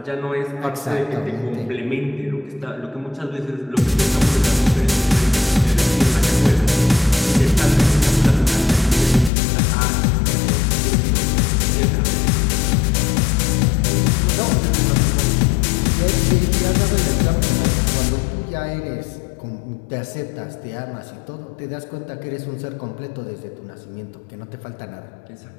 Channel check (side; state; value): right; drops out; at 9.3 s